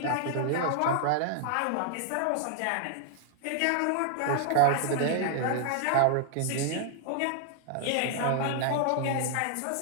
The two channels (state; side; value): different; both; correlation 0.00